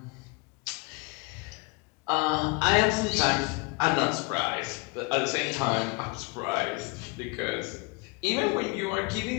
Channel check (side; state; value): right; quieter; 27.5 dB